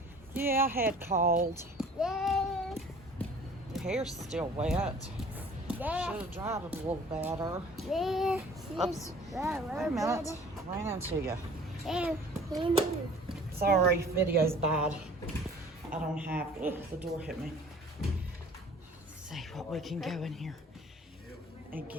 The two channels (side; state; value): both; normal; correlation 0.50